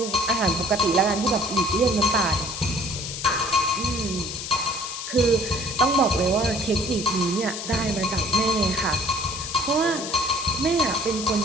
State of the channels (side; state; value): left; noise; hiss, 7 dB below the sound